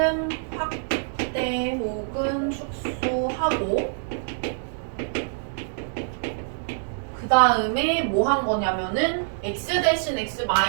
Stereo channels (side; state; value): left; silent; digital silence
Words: 확대 혹은 축소하고 그 다음에 뭐 한 거냐면은 x 대신 x